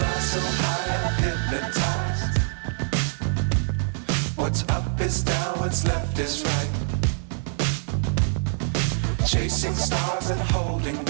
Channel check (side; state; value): left; silent; digital silence